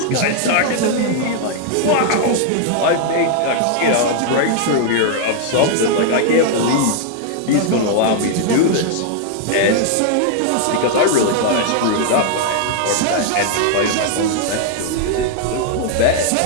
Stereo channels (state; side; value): different; both; correlation 0.00